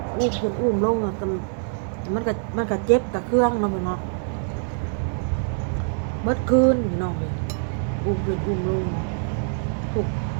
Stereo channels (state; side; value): silent; left; digital silence